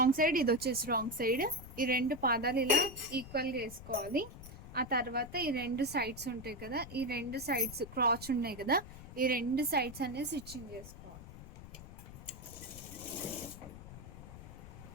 సైడ్, ఇది వచ్చేసి రాంగ్ సైడ్. ఈ రెండు పాదాలు ఇలా ఈక్వల్గా వేసుకోవాలి. ఆ తర్వాత ఈ రెండు సైడ్స్ ఉంటాయి కదా, ఈ రెండు సైడ్స్ క్రాచ్ ఉన్నాయి కదా, ఈ రెండు సైడ్స్ అనేది స్టిచ్చింగ్ చేసుకోవాలి.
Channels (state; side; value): noise; left; rumble, 14 dB below the sound